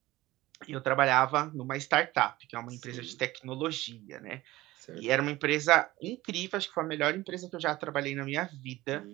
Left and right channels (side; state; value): left; quieter; 17.9 dB